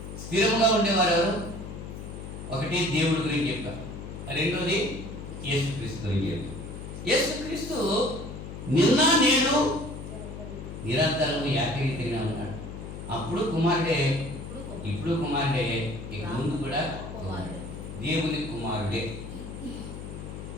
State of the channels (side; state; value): left; noise; hum, 9 dB below the sound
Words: స్థిరంగా ఉండేవారు ఎవరు? ఒకటి దేవుడి గురించి చెప్పారు, రెండోది యేసుక్రీస్తు గురించి చెప్పారు. యేసుక్రీస్తు నిన్న నేడు నిరంతరం ఏకరీతిగా ఉన్నాడు. అప్పుడు కుమారుడే, ఇప్పుడు కుమారుడే, ఇక ముందు కూడా దేవుని కుమారుడే.